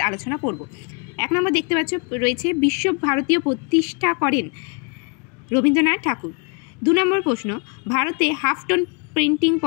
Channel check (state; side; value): quieter; right; 34.5 dB